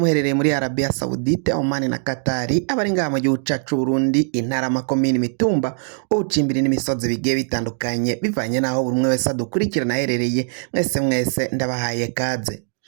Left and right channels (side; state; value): left; silent; 65 dB below the other